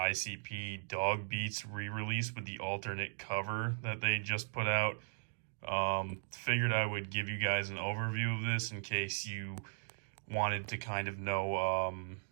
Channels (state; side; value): silent; left; digital silence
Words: Dog Beats re-release with the alternate cover that they just put out. Figured I would give you guys an overview of this in case you wanted to kind of know,